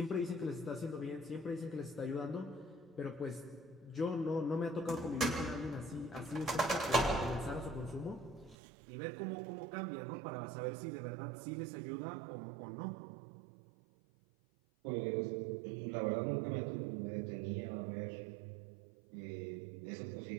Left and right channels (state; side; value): drops out; left; at 8.6 s